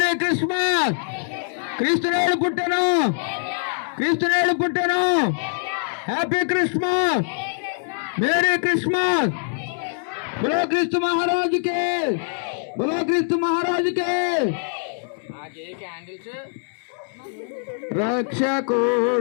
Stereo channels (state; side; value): silent; right; digital silence